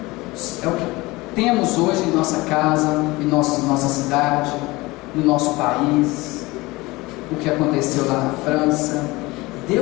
É o que temos hoje em nossa casa, em nossa cidade, no nosso país, o que aconteceu lá na França.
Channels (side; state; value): right; quieter; 21.6 dB